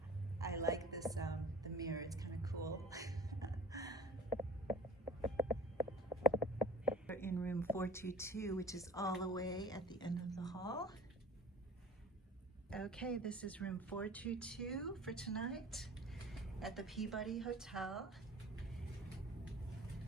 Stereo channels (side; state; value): both; normal; correlation 0.45